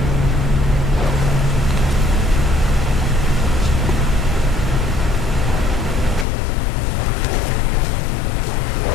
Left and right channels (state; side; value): drops out; right; at 6.2 s